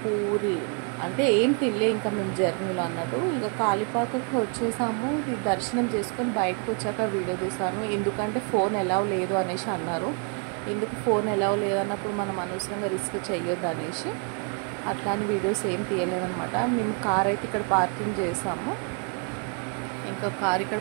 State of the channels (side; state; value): left; quieter; 37.3 dB